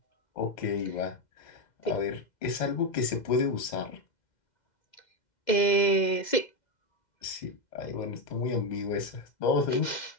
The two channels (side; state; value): right; late; 2.1 ms